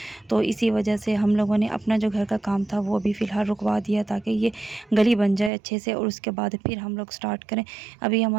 तो इसी वजह से हम लोगों ने अपना जो घर का काम था वो भी फ़िलहाल रुकवा दिया, ताकि ये गली बन जाए अच्छे से, और उसके बाद फिर हम लोग स्टार्ट करें। अभी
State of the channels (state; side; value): drops out; left; at 5.5 s